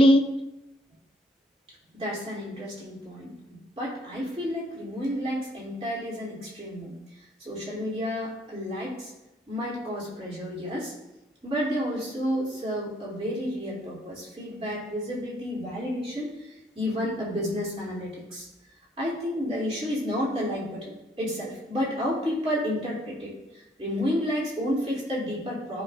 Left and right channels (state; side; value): normal; both; correlation 0.65